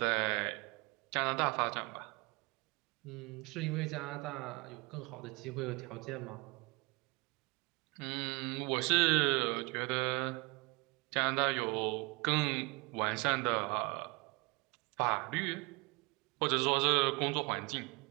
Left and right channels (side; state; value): left; quieter; 27.3 dB